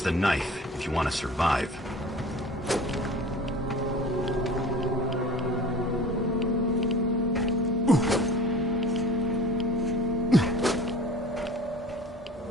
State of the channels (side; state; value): both; normal; correlation 0.42